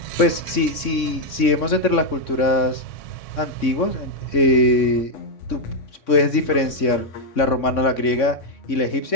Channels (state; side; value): late; right; 3.6 ms